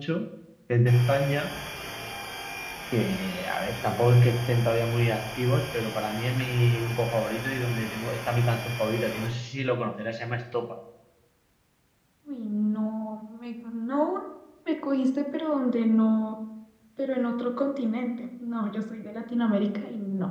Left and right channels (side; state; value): both; identical; correlation 1.00